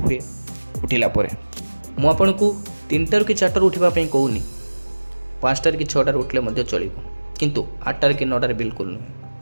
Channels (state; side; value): inverted; both; correlation -1.00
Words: ହୁଏ ଉଠିଲା ପରେ। ମୁଁ ଆପଣଙ୍କୁ 3ଟାରୁ କି 4ଟାରୁ ଉଠିବା ପାଇଁ କହୁନି, 5ଟାରେ କି 6ଟାରେ ଉଠିଲେ ମଧ୍ୟ ଚଳିବ, କିନ୍ତୁ 8ଟାରେ କି 9ଟାରେ ବିଲକୁଲ ନୁହେଁ।